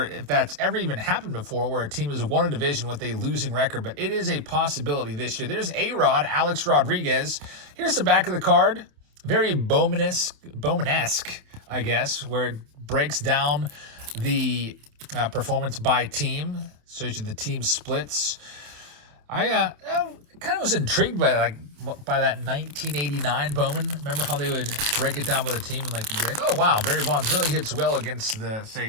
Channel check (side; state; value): left; late; 28 ms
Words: if that's ever even happened before where a team has won a division with a losing record, but it is a possibility this year. There's A-Rod, Alex Rodriguez. Here's the back of the card. Very Bowman-esque, I guess, where it breaks down the performance by team, shows you the team splits. I kind of was intrigued by that 1989 Bowman. Remember how they would break it down by the team and you'd be like, oh wow, Barry Bonds really hits well against the, say,